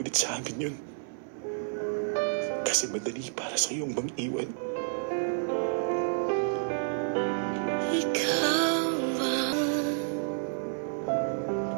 sa amin yun. Kasi madali para sa iyong mang-iwan. Ikaw ba?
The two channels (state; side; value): silent; left; 58 dB below the other